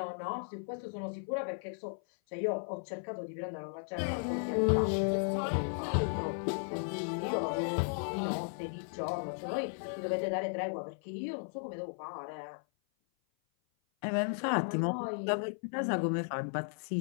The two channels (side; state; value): right; silent; 54 dB below the other